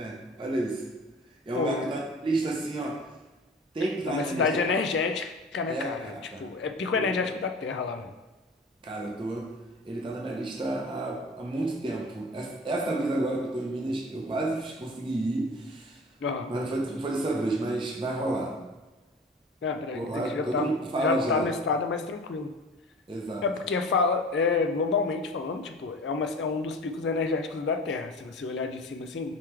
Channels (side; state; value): both; normal; correlation 0.40